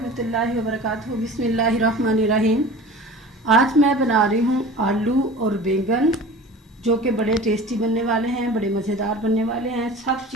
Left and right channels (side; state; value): both; normal; correlation 0.38